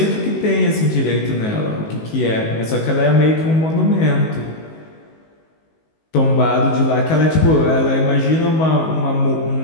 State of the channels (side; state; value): right; late; 19 ms